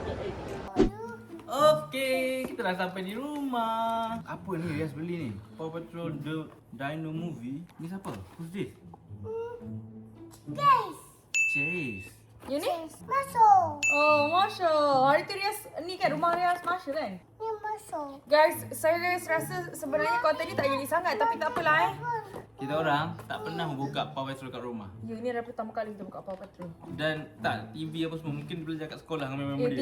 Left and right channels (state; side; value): identical; both; correlation 1.00